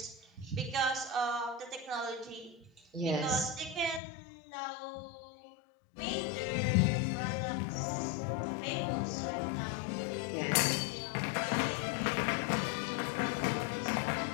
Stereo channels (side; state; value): right; drops out; at 4.0 s